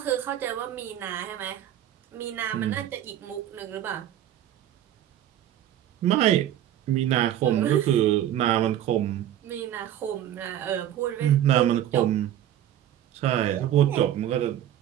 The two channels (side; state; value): left; quieter; 11.6 dB